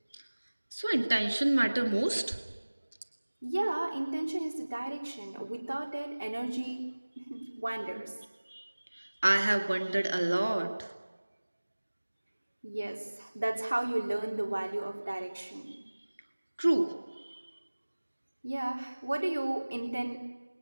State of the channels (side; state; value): both; inverted; correlation -1.00